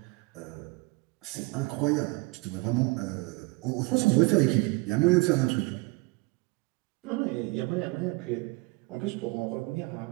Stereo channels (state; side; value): quieter; left; 24.9 dB